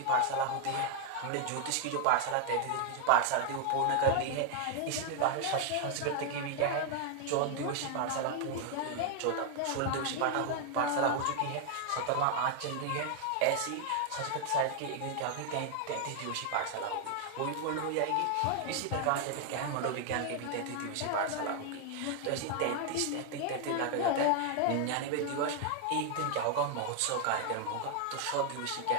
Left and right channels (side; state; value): both; different; correlation 0.00